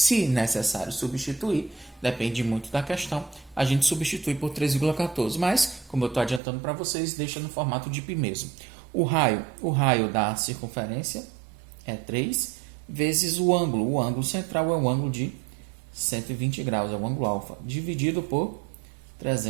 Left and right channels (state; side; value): drops out; left; at 6.4 s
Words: necessário substituir, depende muito da questão, a gente substitui por 3,14. Mas, como eu estou adiantando para vocês, deixa no formato de π mesmo. O raio da circunferência é 3 vezes o ângulo. O ângulo central é o ângulo de 120 graus, é o ângulo alfa, dividido por